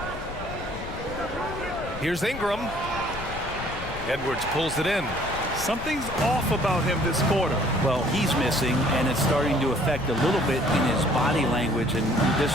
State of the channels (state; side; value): noise; left; rumble, 11 dB below the sound